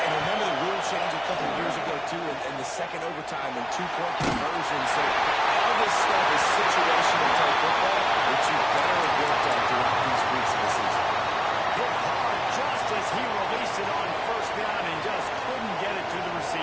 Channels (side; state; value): both; identical; correlation 1.00